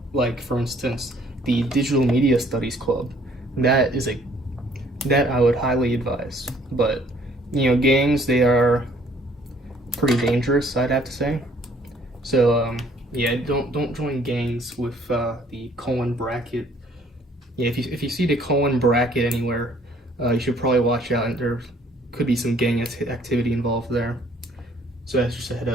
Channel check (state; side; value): normal; both; correlation 0.60